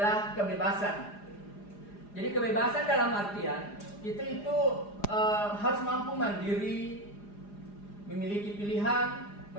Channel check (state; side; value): late; right; 4.9 ms